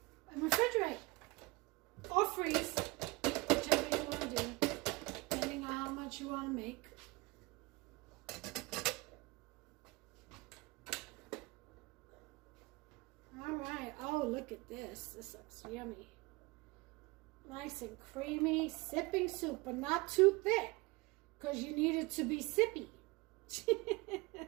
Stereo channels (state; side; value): quieter; left; 24.0 dB